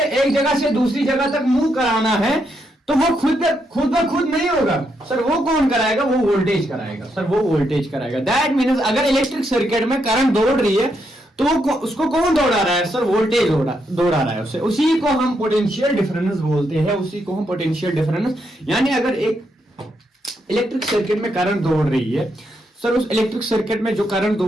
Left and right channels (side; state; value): both; normal; correlation 0.79